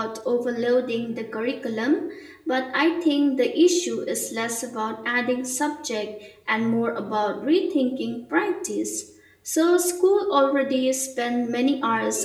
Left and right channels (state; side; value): identical; both; correlation 1.00